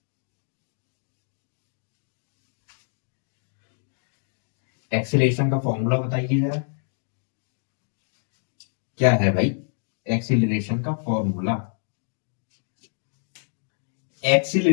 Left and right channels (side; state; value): right; silent; digital silence